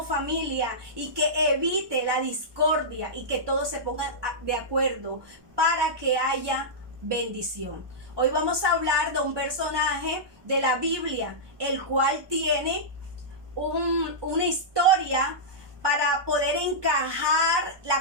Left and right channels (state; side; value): late; left; 1.2 ms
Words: familia y que evite la discordia y que todos se pongan de acuerdo para que haya bendición. Hoy vamos a hablar de un personaje de la Biblia, el cual tiene una historia. Para poder encajar